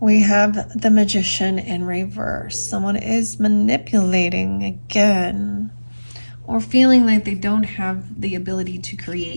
have the Magician in reverse. Someone is manipulating again, or feeling like they don't have the ability to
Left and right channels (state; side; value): inverted; both; correlation -1.00